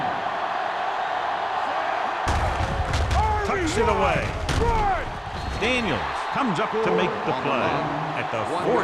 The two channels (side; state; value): both; identical; correlation 1.00